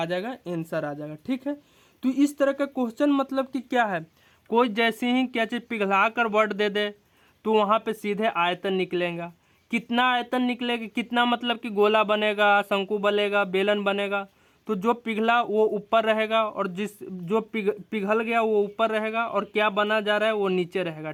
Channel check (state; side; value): identical; both; correlation 1.00